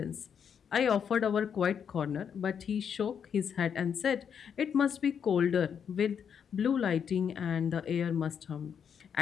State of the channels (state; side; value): quieter; right; 7.6 dB